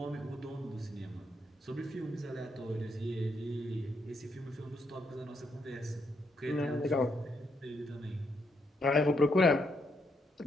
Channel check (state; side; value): normal; both; correlation 0.77